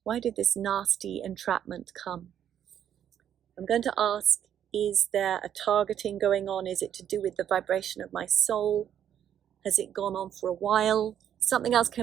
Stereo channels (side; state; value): left; quieter; 9.8 dB